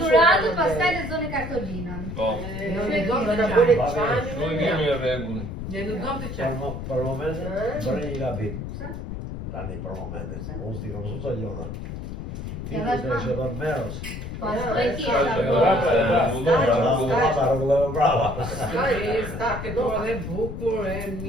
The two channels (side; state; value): left; noise; rumble, 7 dB below the sound